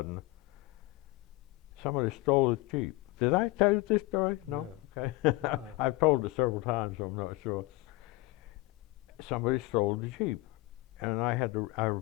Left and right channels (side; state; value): right; quieter; 20.8 dB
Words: somebody stole his Jeep. Did I tell you this story? No? Okay. I've told it several times, so I'm not sure. Somebody stole the Jeep. And I